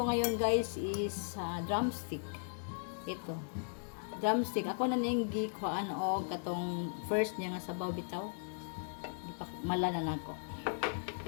ngayon guys is drumstick. Ito. Drumstick. Ako na ning gikuhaan og katong first niya nga sabaw bitaw. Malanan ako.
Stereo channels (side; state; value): right; silent; digital silence